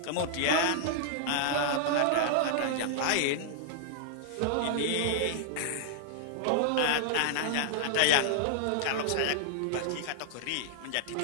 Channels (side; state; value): both; different; correlation -0.01